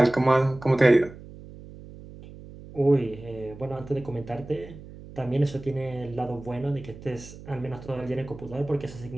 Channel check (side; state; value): right; noise; hum, 16 dB below the sound